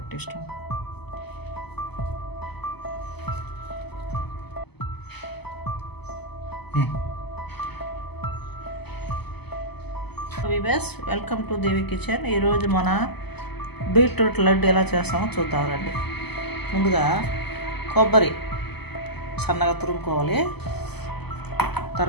ఇష్టం. Viewers, welcome to Devi kitchen. ఈరోజు మన బీట్రూట్ లడ్డు ఎలా చేస్తామో చూద్దాం రండి. ముందుగా కొబ్బరి సన్నగా తురుముకోవాలి.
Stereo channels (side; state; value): right; late; 0.98 ms